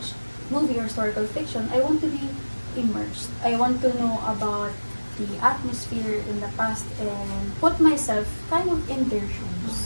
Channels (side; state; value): both; inverted; correlation -1.00